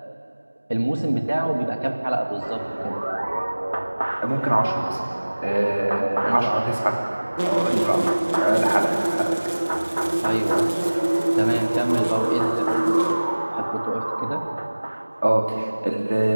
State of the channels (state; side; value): inverted; both; correlation -1.00